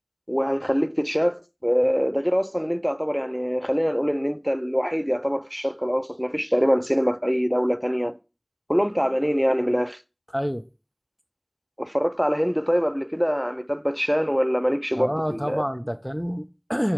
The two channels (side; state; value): both; identical; correlation 1.00